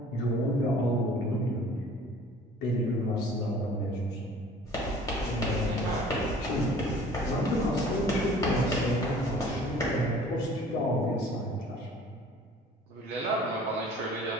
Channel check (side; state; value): both; normal; correlation 0.49